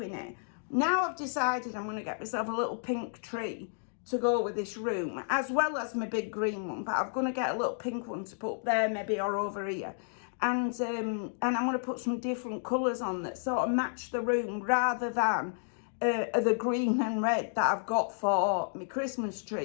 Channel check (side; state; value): right; silent; digital silence